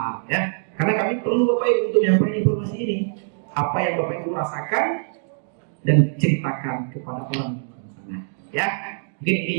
ya. Karena kami perlu bapak ibu untuk menyampaikan informasi ini. Apa yang bapak ibu rasakan dan ceritakan kepada orang sana ya. Mungkin ini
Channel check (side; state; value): left; silent; 63 dB below the other